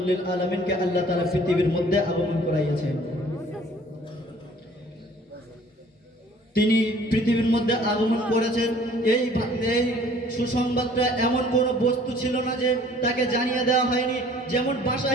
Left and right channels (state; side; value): normal; both; correlation 0.54